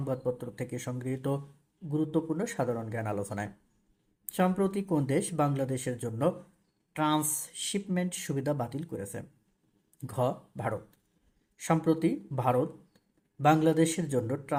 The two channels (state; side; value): identical; both; correlation 1.00